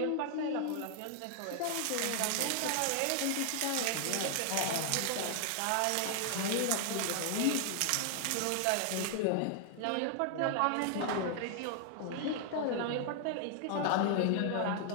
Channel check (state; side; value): different; both; correlation 0.00